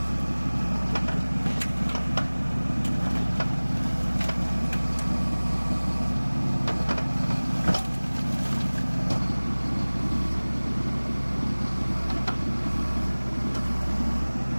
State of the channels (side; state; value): both; inverted; correlation -1.00